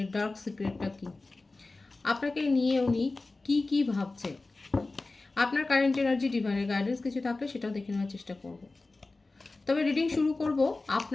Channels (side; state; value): right; quieter; 3.4 dB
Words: ডার্ক সিক্রেটটা কী, আপনাকে নিয়ে উনি কি কি ভাবছে, আপনার কারেন্ট এনার্জি, ডিভাইনের গাইডেন্স কিছু থাকলে সেটাও দেখে নেওয়ার চেষ্টা করব। তবে রিডিং শুরু করব